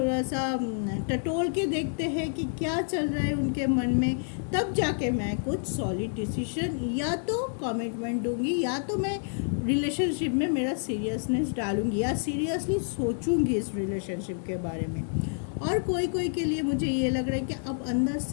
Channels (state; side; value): silent; right; digital silence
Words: सा टटोल के देखते हैं कि क्या चल रहा है उनके मन में, तब जाके मैं कुछ सॉलिड डिसीजन या तो कमिटमेंट दूंगी, या तो मैं रिलेशनशिप में मेरा सीरियसनेस डालूंगी, या सीरियसली सोचूंगी इस रिलेशनशिप के बारे में। और कोई कोई के लिए मुझे ये लग रहा है कि अब अंदर